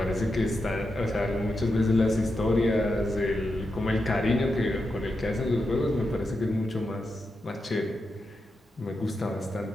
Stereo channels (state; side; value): normal; both; correlation 0.87